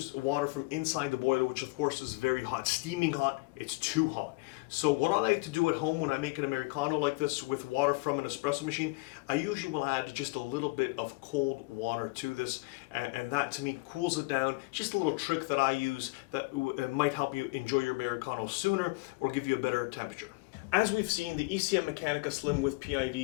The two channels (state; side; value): quieter; right; 26.4 dB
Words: water from inside the boiler, which of course is very hot, steaming hot. It's too hot. So what I like to do at home when I make an Americano like this with water from an espresso machine, I usually will add just a little bit of cold water to this, and that to me cools it down. Just a little trick that I use that might help you enjoy your Americano sooner or give you a better temperature. As we've seen, the ECM Mechanica Slim with